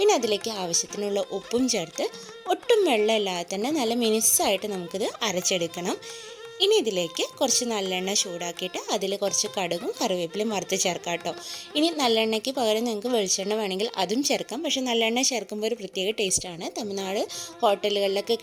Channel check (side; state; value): both; identical; correlation 1.00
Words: അതിലേക്ക് ആവശ്യത്തിനുള്ള ഉപ്പും ചേർത്ത് ഒട്ടും വെള്ളമില്ലാതെ തന്നെ നല്ല മിനുസ്സായിട്ട് നമുക്കിത് അരച്ചെടുക്കണം. ഇനി ഇതിലേക്ക് കുറച്ച് നല്ലെണ്ണ ചൂടാക്കിയിട്ട് അതിൽ കുറച്ച് കടുകും കറിവേപ്പിലയും വറുത്ത് ചേർക്കാം കേട്ടോ. ഇനി നല്ലെണ്ണയ്ക്ക് പകരം നിങ്ങൾക്ക് വെളിച്ചെണ്ണ വേണമെങ്കിൽ അതും ചേർക്കാം. പക്ഷേ നല്ലെണ്ണ ചേർക്കുമ്പോൾ ഒരു പ്രത്യേക ടേസ്റ്റാണ്. തമിഴ്നാട് ഹോട്ടലുകളിലൊക്കെ